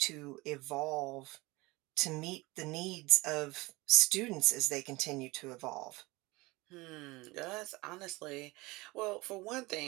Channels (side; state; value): left; quieter; 22.6 dB